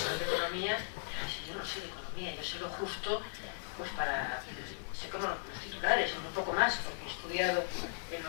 de economía, si yo no soy de economía, yo sé lo justo, pues sé como los titulares, un poco más, porque he estudiado en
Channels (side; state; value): right; silent; digital silence